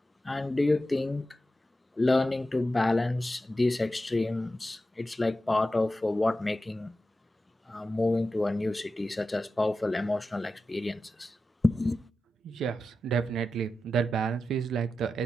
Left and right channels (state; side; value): normal; both; correlation 0.92